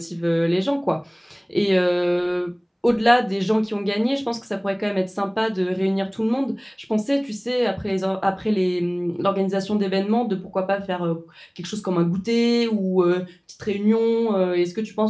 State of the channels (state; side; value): identical; both; correlation 1.00